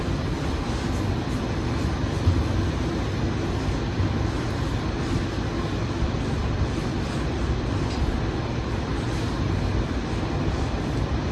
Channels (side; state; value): both; identical; correlation 1.00